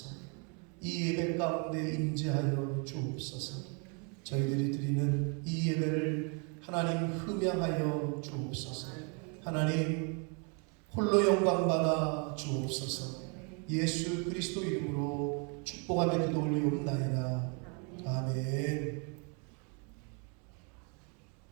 이 예배 가운데 임재하여 주옵소서. 저희들이 드리는 이 예배를 하나님 흠양하여 주옵소서. 하나님 홀로 영광받아 주옵소서. 예수 그리스도 이름으로 축복하며 기도 올리옵나이다. 아멘.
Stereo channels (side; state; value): left; quieter; 36.2 dB